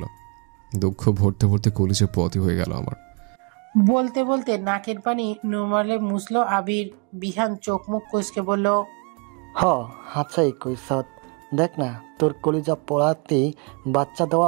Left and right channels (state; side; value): quieter; left; 33.5 dB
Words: দুঃখ ভরতে ভরতে কলিজে পথই হয়ে গেল আমার। বলতে বলতে নাকের পানি নুরমালে মুছল আবির। বিহান চোখ মুখ কুঁচকে বলল, হ, হাতছাই কইসত। দেখ না, তোর কলিজা পড়াতেই বাচ্চা